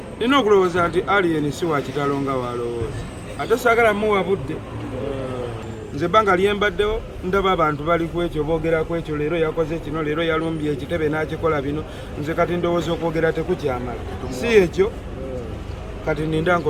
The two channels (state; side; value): identical; both; correlation 1.00